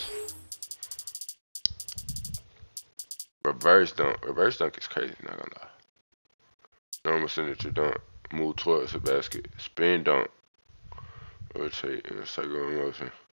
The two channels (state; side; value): inverted; both; correlation -1.00